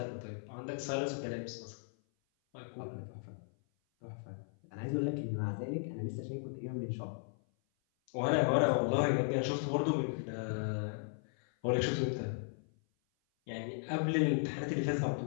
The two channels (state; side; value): silent; right; 53 dB below the other